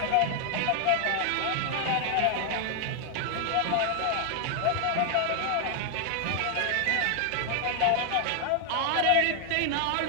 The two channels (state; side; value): different; both; correlation 0.00